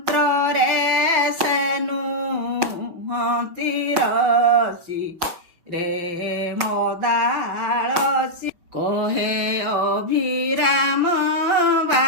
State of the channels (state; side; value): late; left; 5.6 ms